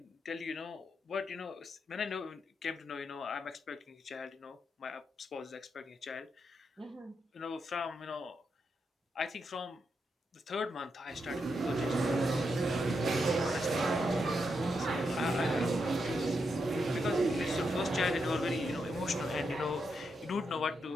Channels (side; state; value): both; normal; correlation 0.83